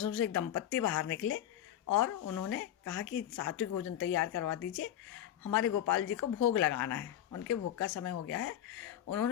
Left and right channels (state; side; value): quieter; right; 11.3 dB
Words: से एक दंपत्ति बाहर निकले और उन्होंने कहा कि सात्विक भोजन तैयार करवा दीजिए, हमारे गोपाल जी को भोग लगाना है, उनके भोग का समय हो गया है।